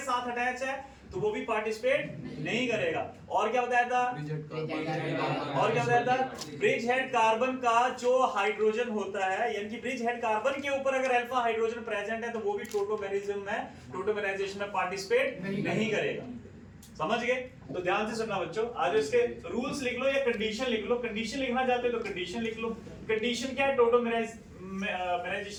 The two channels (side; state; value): both; identical; correlation 1.00